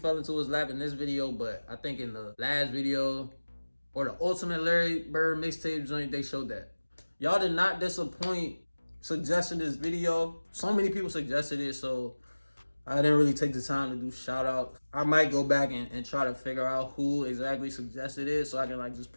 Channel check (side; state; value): both; inverted; correlation -1.00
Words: into his lap in this video, but I think in the last video or the Ultimate Larry Bird mixtape joint, they showed that. Y'all did not disappoint suggesting this video. So many people suggested it, so I didn't really take the time to do shout outs. I might go back and try to figure out who exactly suggested it so I can like just